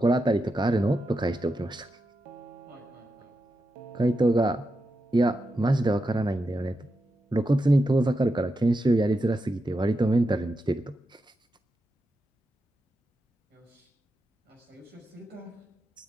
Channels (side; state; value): both; normal; correlation 0.88